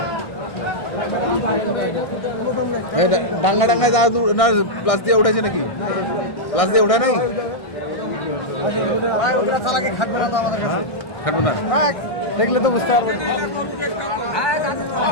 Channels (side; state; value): right; late; 1.6 ms